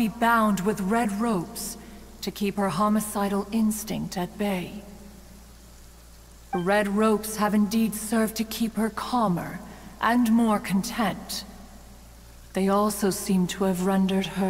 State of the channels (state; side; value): identical; both; correlation 1.00